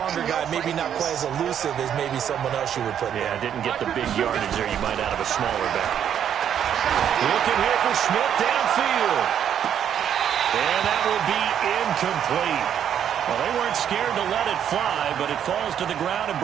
guy, maybe not quite as elusive as maybe someone else you would put there. Yeah, didn't get the big yardage there you might out of a smaller back. Looking here for Smith downfield. And that will be incomplete. Well, they weren't scared to let it fly, but it falls to the ground and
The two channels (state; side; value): quieter; left; 9.2 dB